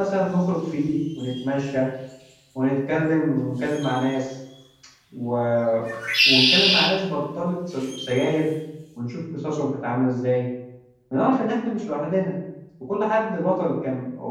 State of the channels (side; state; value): both; identical; correlation 1.00